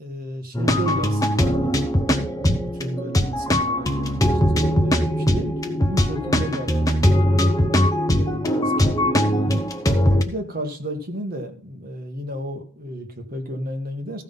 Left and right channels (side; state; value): both; normal; correlation 0.78